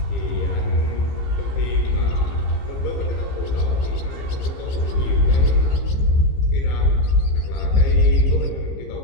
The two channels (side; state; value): right; late; 15 ms